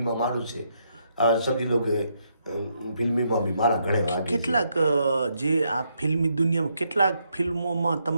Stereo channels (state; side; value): inverted; both; correlation -0.77